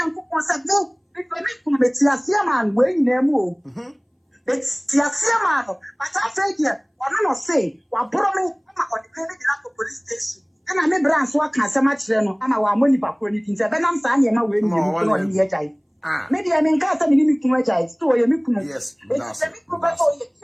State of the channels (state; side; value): identical; both; correlation 1.00